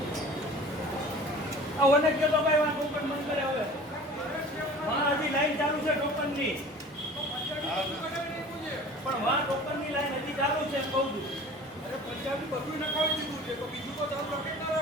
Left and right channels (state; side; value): normal; both; correlation 0.43